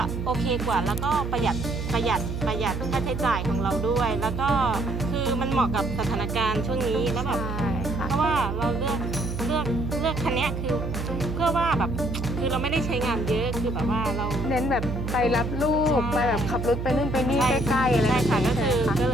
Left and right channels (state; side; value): noise; right; hum, 4 dB below the sound